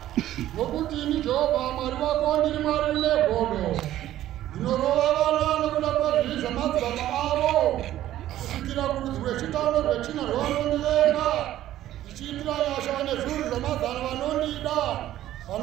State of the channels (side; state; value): left; quieter; 13.3 dB